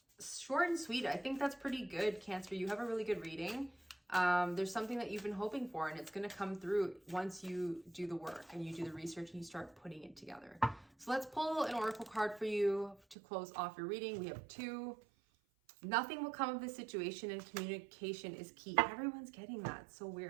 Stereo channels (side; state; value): left; drops out; at 13.2 s